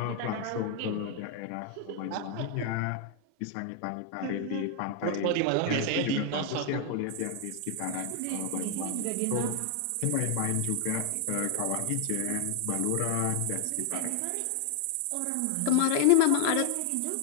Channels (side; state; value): both; different; correlation 0.00